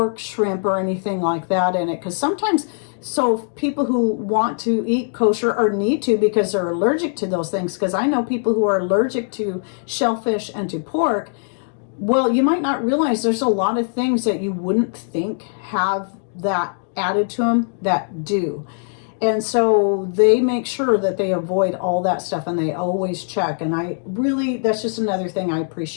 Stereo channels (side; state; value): right; silent; 65 dB below the other